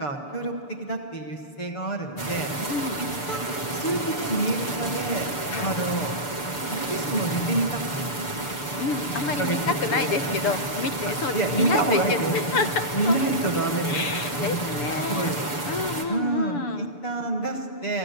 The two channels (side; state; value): right; late; 6.9 ms